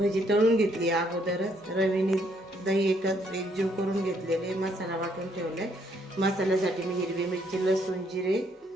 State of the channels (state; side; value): normal; both; correlation 0.70